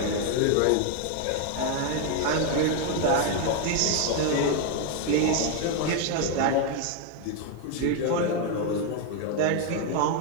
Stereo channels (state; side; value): different; both; correlation 0.01